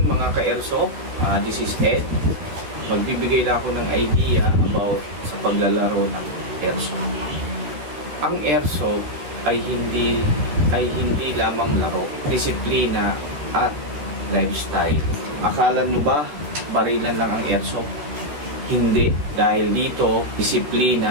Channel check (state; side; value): late; left; 14 ms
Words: mga ka-airsoft. This is Ed. Magbibigay lang ako ng idea about sa paglalaro ng airsoft. Ang airsoft ay hindi lamang laro, disiplina at lifestyle. Akala nyo ba barilan lang ang airsoft? Hindi, dahil dito